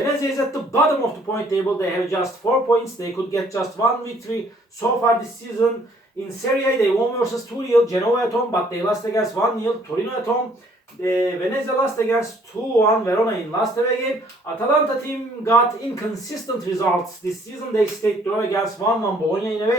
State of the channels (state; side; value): normal; both; correlation 0.62